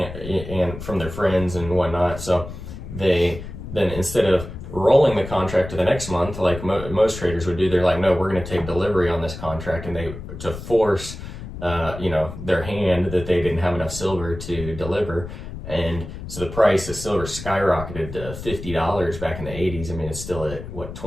from their friends and whatnot. So they then, instead of rolling the contract to the next month like most traders would do, they're like, no, we're going to take delivery on this contract, and to force their hand that they didn't have enough silver to deliver. And so the price of silver skyrocketed to $50 back in the 80s. I mean, it's still at what,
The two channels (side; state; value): left; noise; rumble, 10 dB below the sound